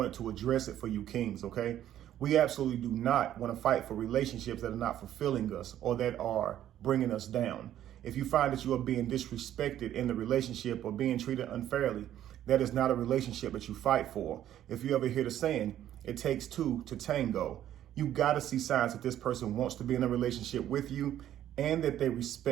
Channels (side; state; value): left; quieter; 11.7 dB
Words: to address it for you kings, okay? We absolutely do not want to fight for relationships that are not fulfilling us or that are bringing us down. If you find that you are being disrespected in the relationship or being treated unfairly, that is not a relationship that you fight for. If you ever hear the saying, it takes two to tango, you got to see signs that this person wants to be in a relationship with you and that they